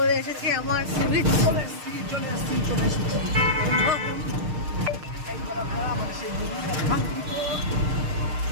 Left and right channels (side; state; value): left; late; 6.5 ms